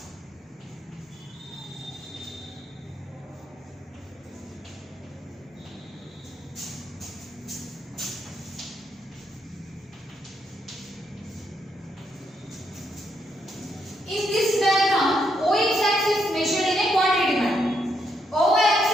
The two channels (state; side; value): normal; both; correlation 0.77